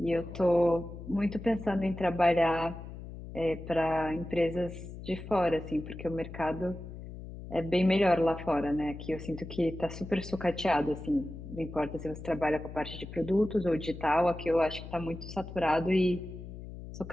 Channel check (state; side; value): noise; left; hum, 12 dB below the sound